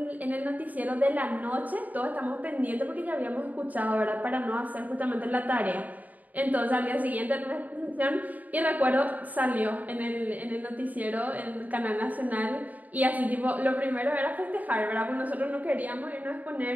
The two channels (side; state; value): left; late; 0.077 ms